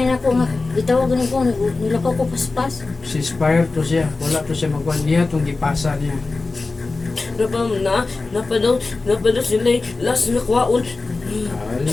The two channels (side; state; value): right; quieter; 3.7 dB